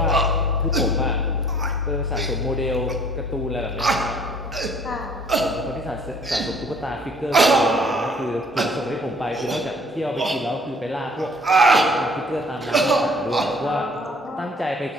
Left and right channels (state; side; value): normal; both; correlation 0.56